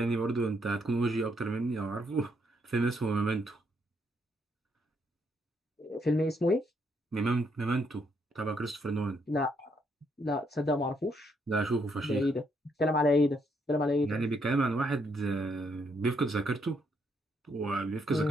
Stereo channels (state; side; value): normal; both; correlation 0.74